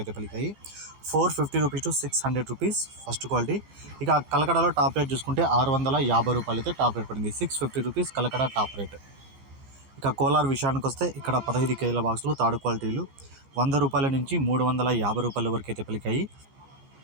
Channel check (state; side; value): late; left; 15 ms